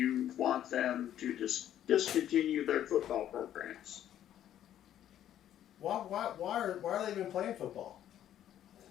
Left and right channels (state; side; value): quieter; right; 11.2 dB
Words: want them to discontinue their football programs. why are they even playing football?